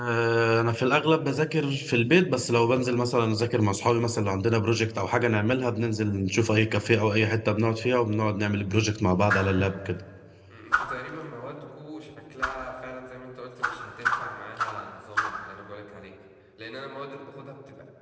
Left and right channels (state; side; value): identical; both; correlation 1.00